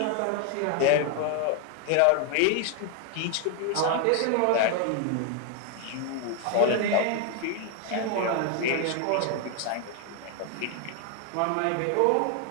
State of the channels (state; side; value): different; both; correlation 0.01